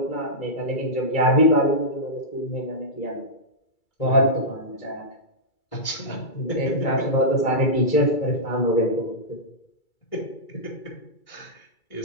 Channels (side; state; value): right; late; 2.3 ms